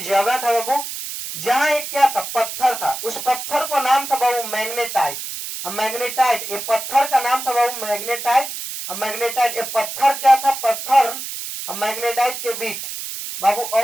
जगह था बाबू, जहां एक क्या था? पत्थर था। उस पत्थर को नाम था बाबू मैग्नेटाइट। मैग्नेटाइट, ये पत्थर का नाम था बाबू मैग्नेटाइट। मैग्नेटाइट, ये पत्थर क्या था? पत्थर मैग्नेटाइट के बीच बाबू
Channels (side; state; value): right; noise; hiss, 7 dB below the sound